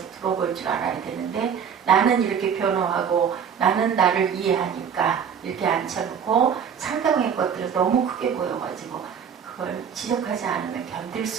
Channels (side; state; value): left; quieter; 7.4 dB